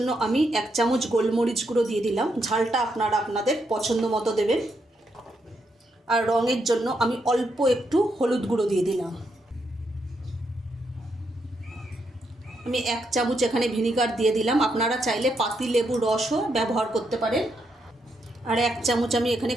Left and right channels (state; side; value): normal; both; correlation 0.79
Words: আমি 1 চামচ গোলমরিচ গুঁড়ো দিয়ে দিলাম। ঝালটা আপনারা আপনাদের পছন্দ মতো দেবেন। আর রঙের জন্য আমি অল্প একটু হলুদ গুঁড়ো দিয়ে দিলাম। আমি 1 চামচ এখানে ভিনিগার দিয়ে দিলাম। আপনারা চাইলে পাতিলেবুর রসও ব্যবহার করতে পারেন। আর 1 চামচ আমি এখানে